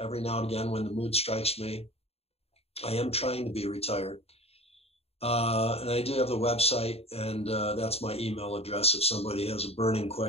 now and again when the mood strikes me. I am trying to be retired. And I do have the website, and that's my email address if somebody has a burning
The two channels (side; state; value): right; late; 0.29 ms